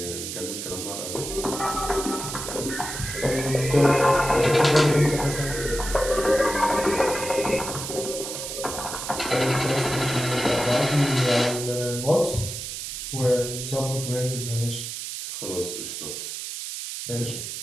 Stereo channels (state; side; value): noise; right; hiss, 6 dB below the sound